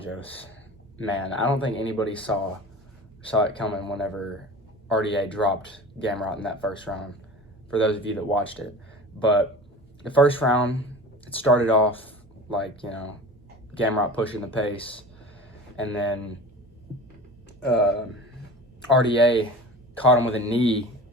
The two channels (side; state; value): both; normal; correlation 0.37